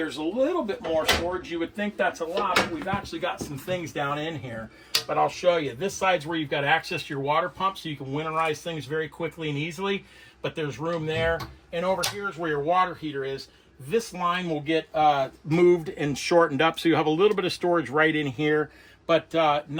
a little bit more storage. You would think that's a lot, but we've actually got some things down in here. But I'll show you. This side's where you've got access to your water pump, so you can winterize things very quickly and easily. But there's room there. And over here is where your water heater is. This line will get moved and shortened up, so you have a little bit of storage right in here, but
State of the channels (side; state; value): both; identical; correlation 1.00